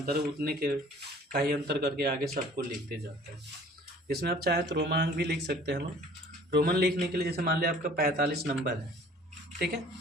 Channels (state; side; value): normal; both; correlation 0.50